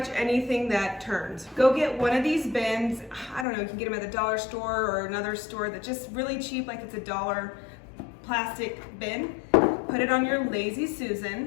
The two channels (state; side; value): drops out; right; at 3.5 s